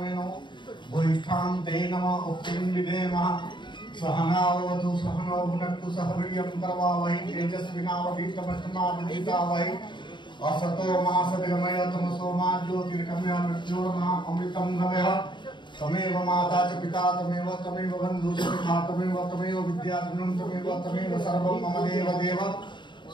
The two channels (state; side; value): late; right; 0.23 ms